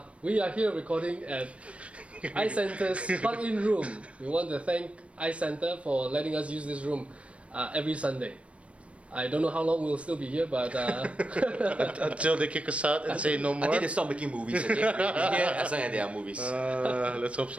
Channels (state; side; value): late; left; 0.062 ms